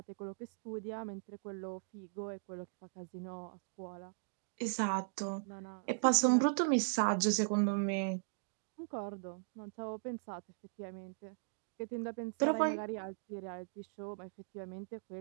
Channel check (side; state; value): left; silent; digital silence